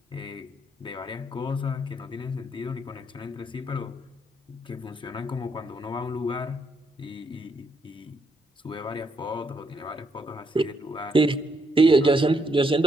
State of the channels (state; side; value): normal; both; correlation 0.75